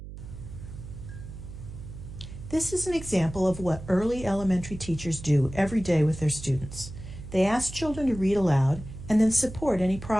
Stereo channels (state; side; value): noise; right; hum, 12 dB below the sound